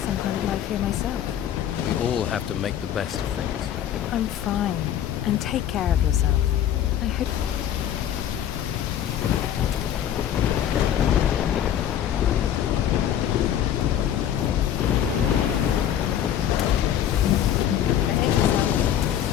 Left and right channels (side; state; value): right; quieter; 10.3 dB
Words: some kind of life here myself. We all have to make the best of things. I'm fine. And take care of yourself. I hope...